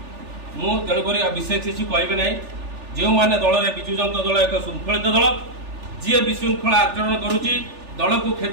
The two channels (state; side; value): late; left; 3.4 ms